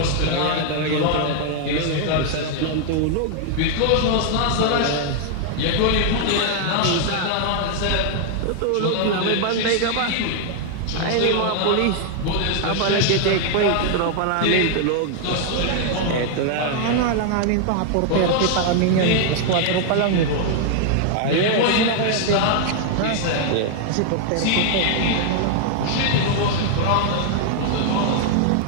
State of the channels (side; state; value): both; different; correlation 0.00